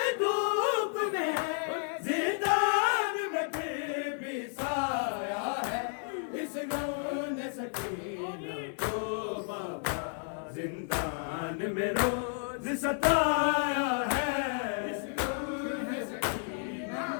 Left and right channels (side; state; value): right; silent; 56 dB below the other